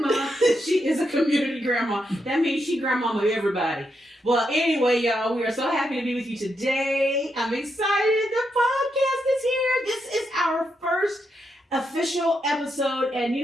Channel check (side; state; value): both; normal; correlation 0.82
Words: She is a community grandma. That means she grandmama everybody. Well, anyway, y'all, we are so happy to be with you today. I'm excited. The podcast is here. This is our first official episode, and